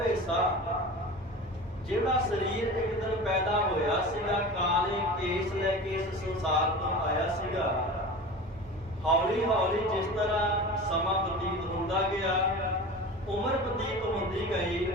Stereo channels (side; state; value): both; normal; correlation 0.34